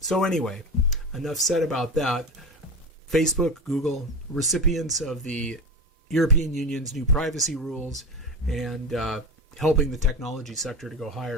anyway, enough said about that. Facebook, Google, recipients of the European Union's new privacy rules, and helping the technology sector to go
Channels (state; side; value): normal; both; correlation 0.25